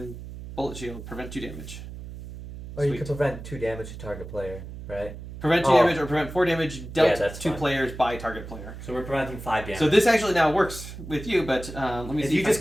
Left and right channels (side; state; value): right; noise; hum, 12 dB below the sound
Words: Bullet Shield, prevent 2 damage. Or you Sweet. can prevent 2 damage to target player, right? Prevent 2 damage or prevent 4 damage dealt that's to fine. players by target player. So we're preventing 5 damage. So this actually now works with you, but let me if see you if just